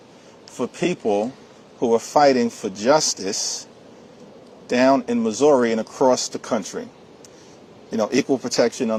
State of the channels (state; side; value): identical; both; correlation 1.00